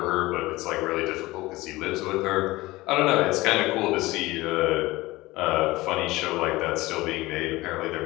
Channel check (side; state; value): right; quieter; 19.7 dB